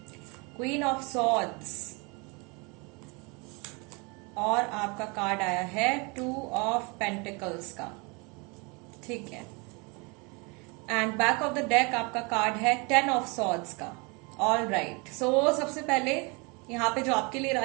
queen of swords, और आपका कार्ड आया है 2 ऑफ पेंटिकल्स का, ठीक है। And back of the deck आपका कार्ड है 10 ऑफ सॉर्ड्स का। ऑल राइट, सो सबसे पहले यहाँ पे जो आपके लिए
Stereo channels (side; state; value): left; quieter; 29.7 dB